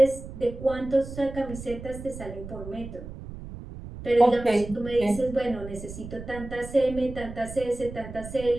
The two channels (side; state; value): right; noise; rumble, 12 dB below the sound